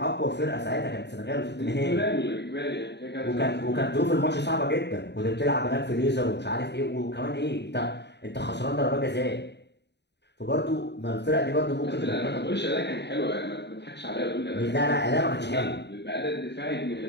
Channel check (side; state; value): right; late; 0.50 ms